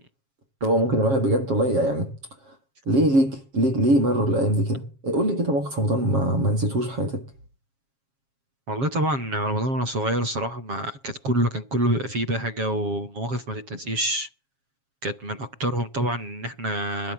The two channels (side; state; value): left; late; 7.4 ms